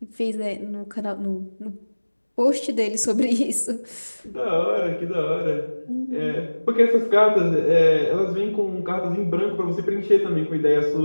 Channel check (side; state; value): both; inverted; correlation -1.00